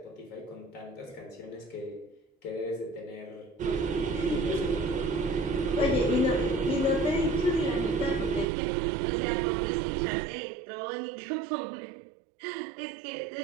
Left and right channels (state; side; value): drops out; left; at 8.5 s